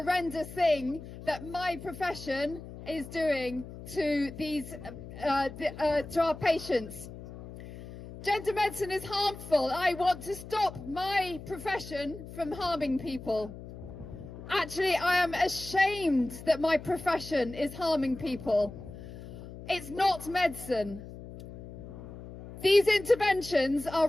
thing that my profession is doing to these to our patients. Gender medicine is harmful. I want to stop my profession from harming people. Actually, I am ashamed that my profession is harming people. It's not medicine. These interventions are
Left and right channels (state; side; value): noise; left; hum, 13 dB below the sound